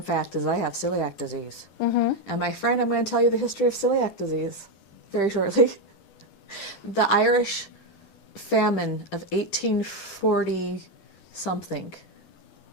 fact is I have celiac disease. And my friend, I'm going to tell you the history of celiac disease very shortly. The Irish famine of 1840 something.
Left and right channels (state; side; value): late; right; 12 ms